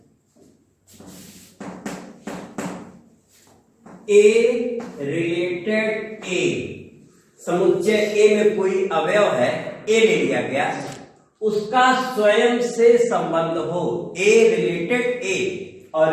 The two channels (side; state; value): both; identical; correlation 1.00